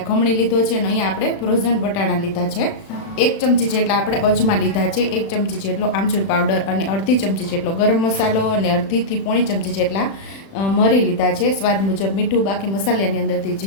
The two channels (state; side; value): late; right; 36 ms